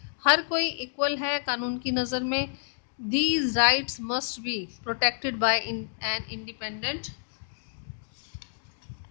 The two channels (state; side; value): silent; right; digital silence